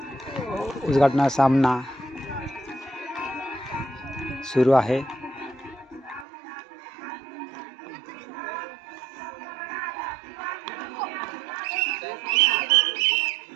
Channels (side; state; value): left; drops out; at 6.2 s